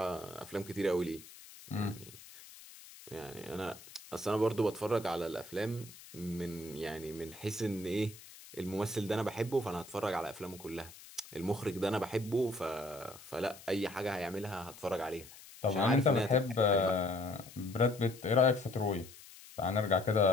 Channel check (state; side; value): noise; left; hiss, 18 dB below the sound